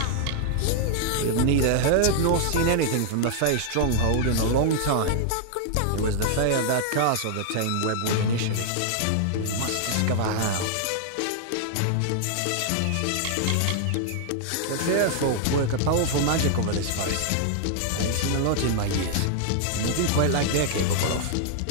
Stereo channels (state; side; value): different; both; correlation 0.00